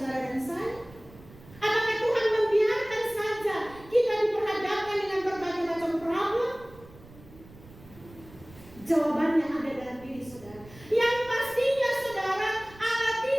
dan saya? Apakah Tuhan membiarkan saja kita diperhadapkan dengan berbagai macam problem? Jawabannya ada dalam diri saudara. Yang pastinya saudara, Allah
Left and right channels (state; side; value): noise; right; rumble, 21 dB below the sound